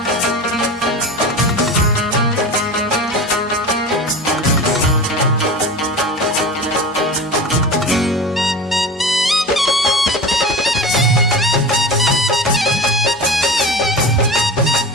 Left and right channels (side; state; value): both; normal; correlation 0.31